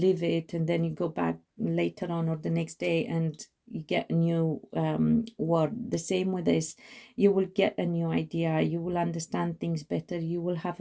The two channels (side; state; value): both; identical; correlation 1.00